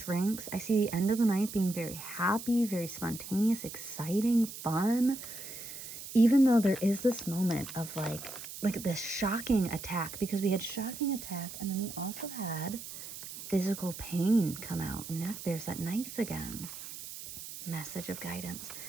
I see the end of the night being very happy, very spontaneous, exciting, fun. even though there is this moment of like this shocking attack, because we had shocking attack and then we also had physical pain come out, and now there's that knife again. Message of guidance.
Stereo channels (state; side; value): noise; right; hiss, 11 dB below the sound